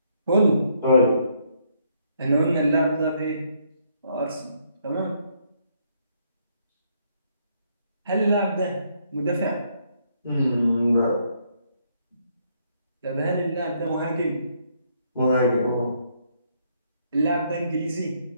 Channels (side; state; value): both; inverted; correlation -0.71